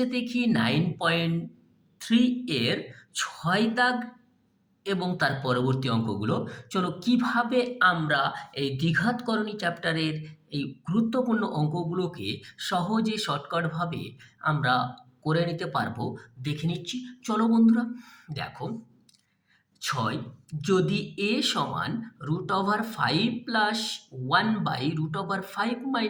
দেখি 9.3 এর 6 দাগ এবং তার পরবর্তী অঙ্কগুলো। চলো কিভাবে আমরা এই দ্বিঘাতকরণী চ্যাপ্টারের এই গুরুত্বপূর্ণ অঙ্কগুলোকে সহজে শর্টকাটভাবে আমরা করে নিতে পারবো দেখে নিচ্ছি। চলো বন্ধুরা, দেখো 6 যদি a সমান √5 + 1/√5 -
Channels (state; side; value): identical; both; correlation 1.00